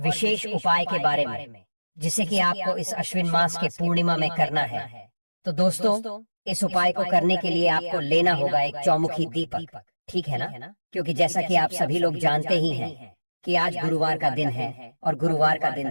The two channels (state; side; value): inverted; both; correlation -1.00